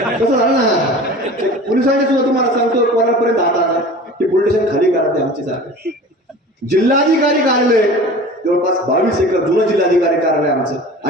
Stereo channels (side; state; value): both; normal; correlation 0.39